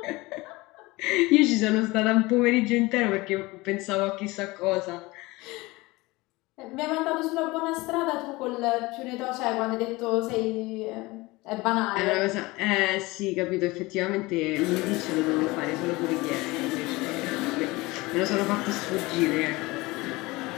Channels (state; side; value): quieter; right; 21.9 dB